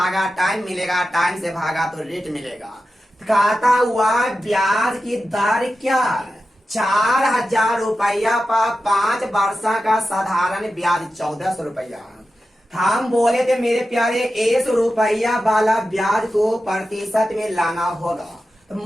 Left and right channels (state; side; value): normal; both; correlation 0.92